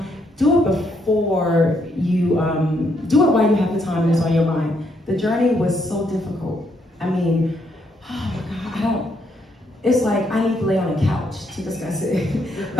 Do it before you, do it while you have the time and it's on your mind. The journey was so difficult. I mean, oh my God, it's like I need to lay on a couch to discuss it.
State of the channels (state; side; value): normal; both; correlation 0.74